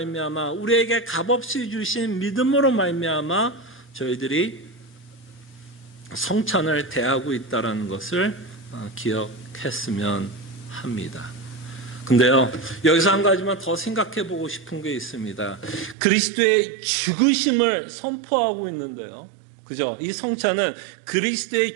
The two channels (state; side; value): drops out; left; at 16.0 s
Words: 우리에게 값없이 주신 믿음으로 말미암아 저희들이 성찬을 대하고 있다는 것을 기억했으면 합니다. 근데요, 여기서 한 가지만 더 생각해 보고 싶은 게 있습니다. 그리스도의 죽으심을 선포하고 있는데요. 그죠? 이 성찬은